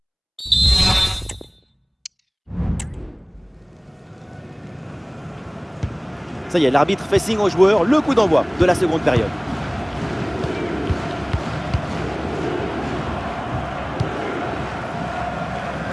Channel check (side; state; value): both; identical; correlation 1.00